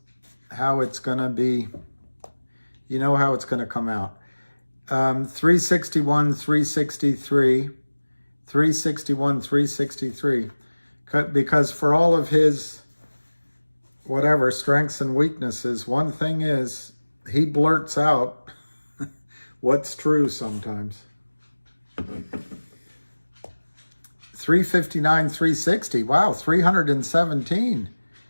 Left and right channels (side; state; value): both; inverted; correlation -1.00